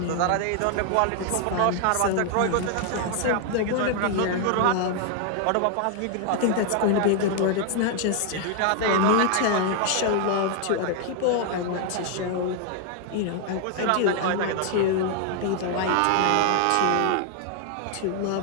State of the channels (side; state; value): both; different; correlation 0.00